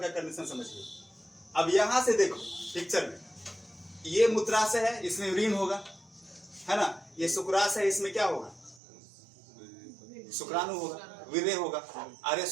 कंडीशन समझिए। अब यहां से देखो पिक्चर में, ये मूत्राशय है, इसमें यूरिन होगा, है ना। ये शुक्राशय है, इसमें क्या होगा? शुक्राणु होगा, वीर्य होगा। अरे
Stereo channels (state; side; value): drops out; left; at 8.8 s